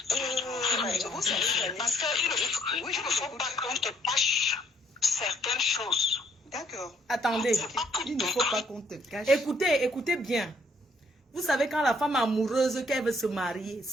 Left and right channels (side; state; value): both; normal; correlation 0.67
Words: Vous savez, parce qu'il ne faut pas qu'on te cache certaines choses. D'accord. Attendez, Il ne faut pas qu'on te cache. écoutez bien. Vous savez quand la femme amoureuse qu'elle veut se marier,